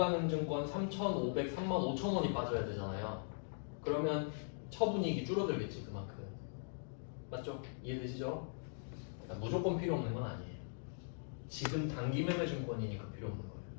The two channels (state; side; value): silent; right; digital silence